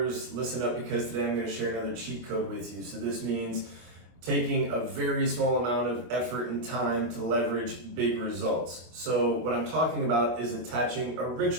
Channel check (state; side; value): late; left; 25 ms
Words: listen up because today I'm going to share another cheat code with you. So this means taking a very small amount of effort and time to leverage big results. So what I'm talking about is attaching a